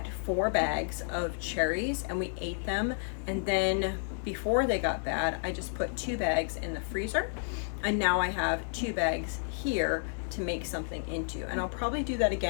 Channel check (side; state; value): right; silent; digital silence